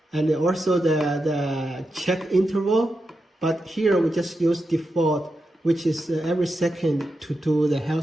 and also the check interval. But here we just use default, which is every second to do the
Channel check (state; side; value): normal; both; correlation 0.88